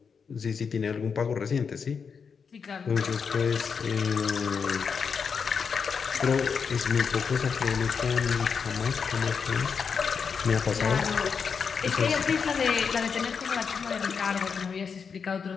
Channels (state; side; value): quieter; right; 6.0 dB